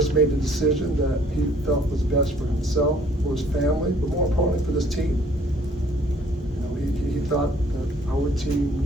made the decision that he felt was best for himself, for his family, but more importantly for this team. He thought that our team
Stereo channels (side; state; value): both; normal; correlation 0.59